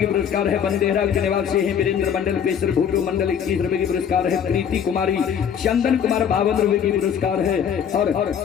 पुरस्कार है। बंदेरा के निवासी है। वीरेंद्र मंडल पेशर भूटो मंडल 21 रुपए की पुरस्कार है। प्रीति कुमारी चंदन कुमार 52 रुपए की पुरस्कार है। और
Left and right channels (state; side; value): quieter; right; 8.1 dB